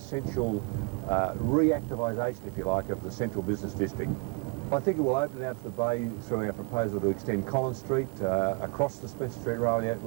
reactivation, if you like, of the central business district. I think it will open out to the bay through our proposal to extend Collins Street across the Spencer Street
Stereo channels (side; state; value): left; quieter; 32.1 dB